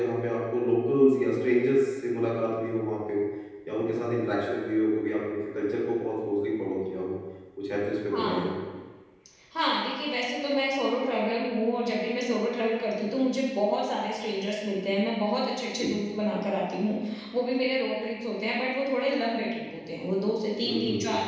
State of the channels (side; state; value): both; identical; correlation 1.00